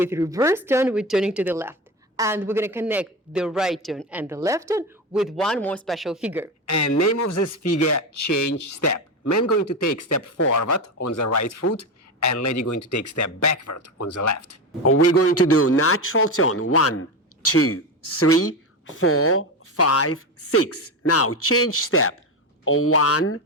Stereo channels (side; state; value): both; normal; correlation 0.18